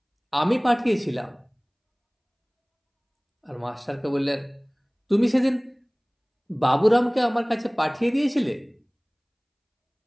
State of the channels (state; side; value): identical; both; correlation 1.00